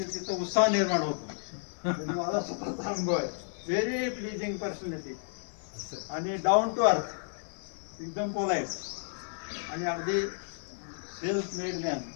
तिथं उत्साह निर्माण होतो. म्हणजे मला स्वतःचा अनुभव आहे. व्हेरी प्लीजिंग पर्सनॅलिटी आणि डाऊन टू अर्थ, एकदम पोलाईट आणि अगदी सेल्फ मेड मॅन.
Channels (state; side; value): silent; right; 57 dB below the other